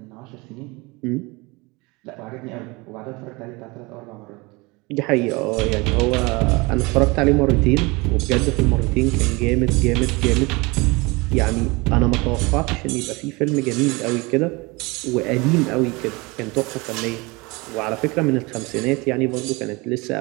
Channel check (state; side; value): quieter; left; 25.2 dB